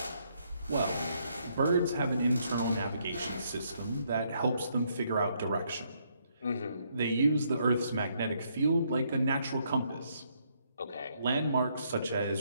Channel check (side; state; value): both; inverted; correlation -0.72